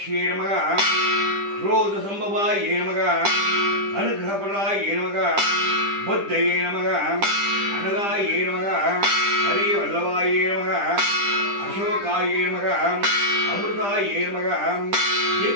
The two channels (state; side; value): late; left; 10 ms